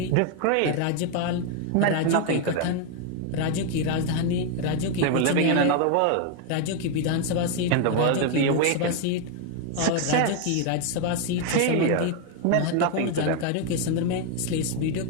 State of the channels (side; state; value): both; different; correlation 0.01